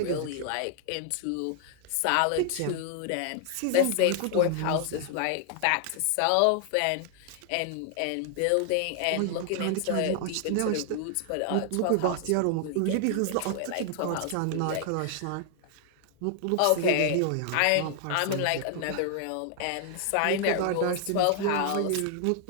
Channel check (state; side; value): different; both; correlation 0.00